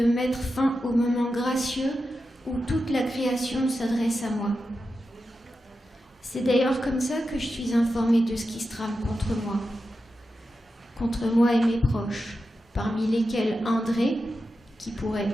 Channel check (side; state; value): both; normal; correlation 0.90